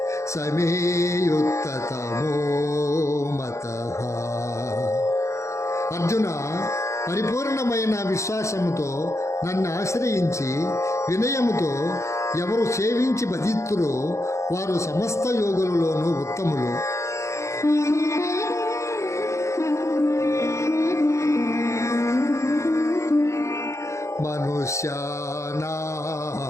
సమే యుక్తతమో మతః. అర్జున, పరిపూర్ణమైన విశ్వాసముతో నన్ను ఆశ్రయించి వినయముతో ఎవరు సేవించి భజిత్తురో వారు సమస్త యోగులలోనూ ఉత్తములు.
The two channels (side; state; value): right; late; 0.14 ms